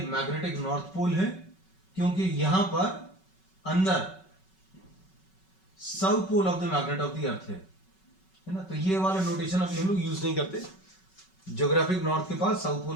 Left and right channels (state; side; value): late; right; 5.3 ms